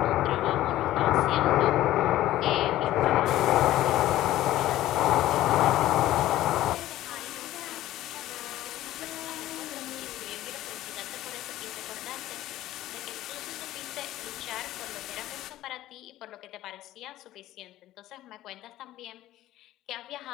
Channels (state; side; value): quieter; right; 14.7 dB